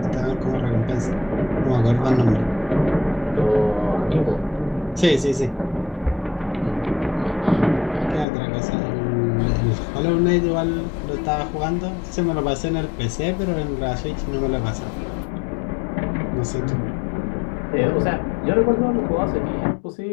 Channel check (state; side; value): drops out; right; at 8.2 s